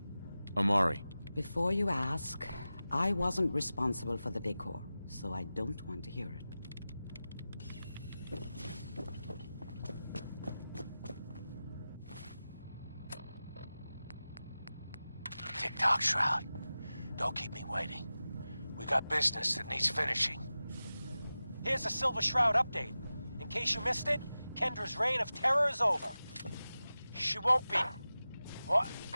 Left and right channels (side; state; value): both; inverted; correlation -0.95